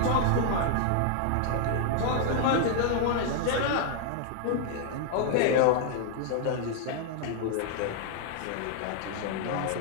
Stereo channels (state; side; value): different; both; correlation 0.00